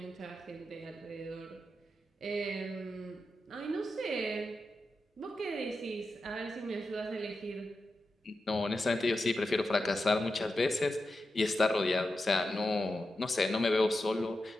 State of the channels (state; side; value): normal; both; correlation 0.90